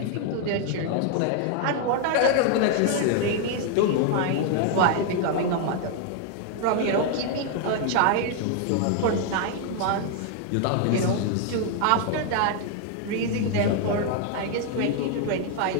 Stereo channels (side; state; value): both; different; correlation 0.00